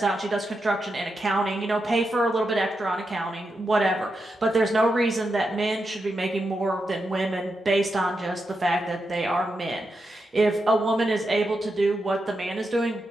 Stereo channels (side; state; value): both; normal; correlation 0.86